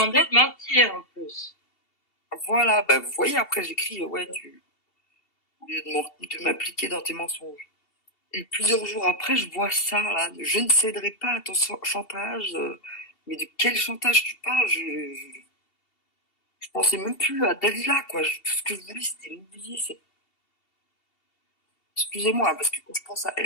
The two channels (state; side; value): late; right; 2.7 ms